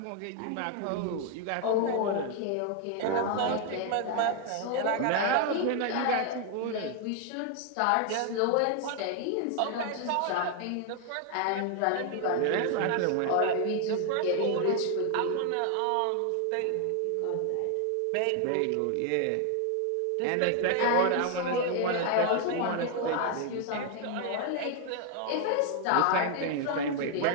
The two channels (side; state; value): both; different; correlation 0.00